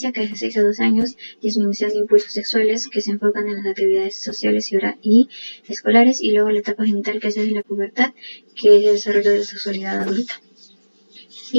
que es de 6 a 12 años, disminución de impulsos sexuales que se enfocan en las actividades sociales y escolares. Y luego la etapa genital, que es desde la pubertad, que es el desarrollo de la sexualidad adulta.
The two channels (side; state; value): both; inverted; correlation -1.00